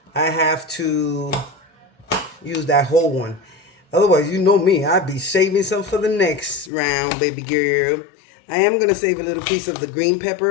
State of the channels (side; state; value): right; drops out; at 6.7 s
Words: I have to use that whole one. Otherwise, you know me, I'd be saving some for the next round, baby girl. I am going to save a little piece of the green